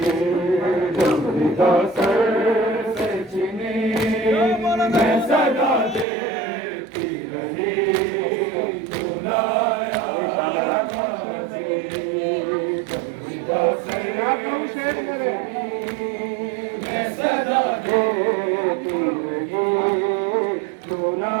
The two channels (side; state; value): left; drops out; at 6.1 s